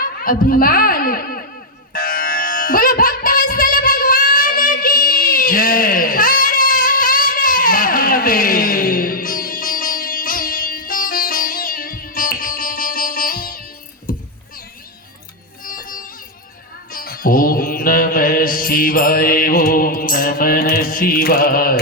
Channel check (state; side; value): normal; both; correlation -0.02